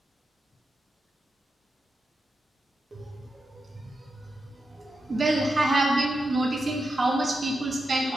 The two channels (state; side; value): normal; both; correlation 0.88